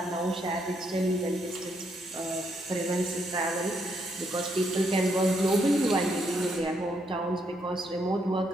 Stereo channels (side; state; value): both; normal; correlation 0.75